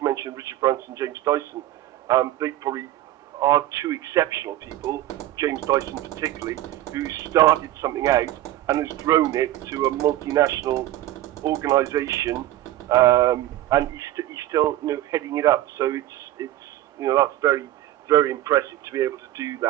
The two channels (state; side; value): quieter; left; 14.4 dB